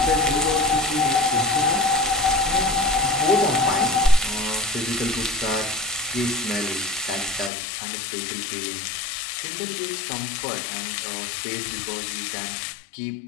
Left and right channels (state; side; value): drops out; right; at 7.5 s